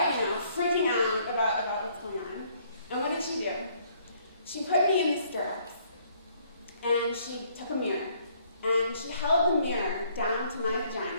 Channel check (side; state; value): both; inverted; correlation -0.65